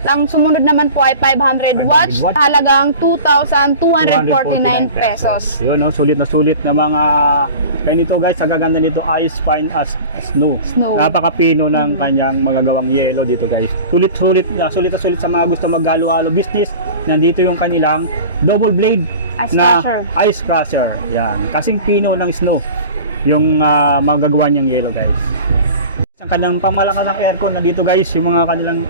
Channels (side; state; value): both; inverted; correlation -0.38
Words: ang sumunod naman po ay 500 watts, 500 watts. halagang 2,249 pesos. Yun, no? Sulit na mga kaya nito, guys, ang gaganda nito, ice fine as snow. Snow. Napakapino ng kanyang magagawang yelo dito, guys. Sulit na sulit sa mga gusto maghalo-halo business. Nandito yung kanilang double blade Ice na crusher. ice crusher. Yan, kasing pino ng snow yung magagawa niyang yelo, guys. Ang kanyang pamalakas ng aircon na dito, guys, yung mga kanilang